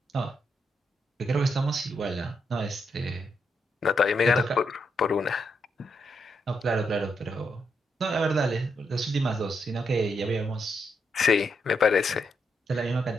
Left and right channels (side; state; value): both; normal; correlation 0.80